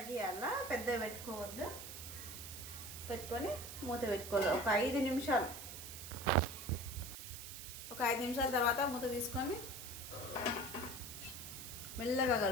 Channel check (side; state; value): right; noise; hiss, 10 dB below the sound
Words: పెద్దగా పెట్టుకోవద్దు. పెట్టుకొని మూత పెట్టుకోవాలి ఒక 5 నిమిషాలు. ఒక 5 నిమిషాల తర్వాత మూత తీసుకొని మెల్లగా